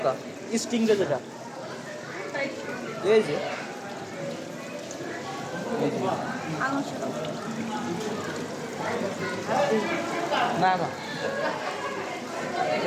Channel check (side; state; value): both; identical; correlation 1.00